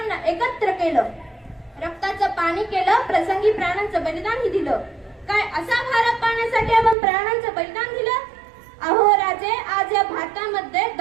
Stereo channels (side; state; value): left; drops out; at 7.0 s